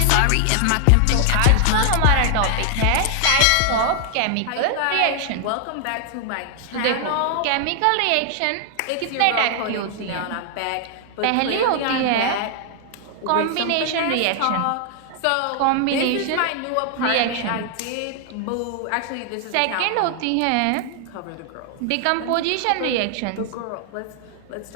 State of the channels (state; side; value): different; both; correlation 0.00